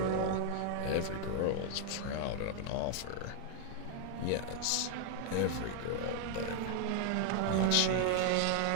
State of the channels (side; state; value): both; different; correlation 0.00